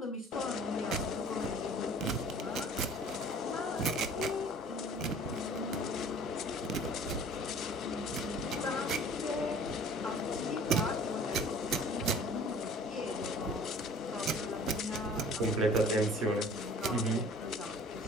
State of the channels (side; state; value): both; normal; correlation 0.49